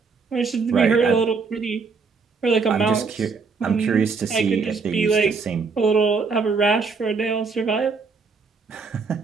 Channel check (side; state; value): left; quieter; 4.8 dB